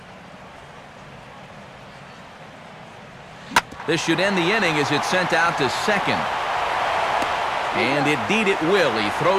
This should end the inning as it's sent out to second. And indeed it will. He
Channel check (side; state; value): both; identical; correlation 1.00